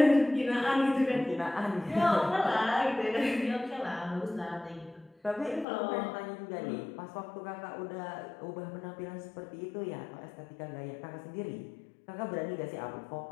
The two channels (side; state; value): right; drops out; at 5.7 s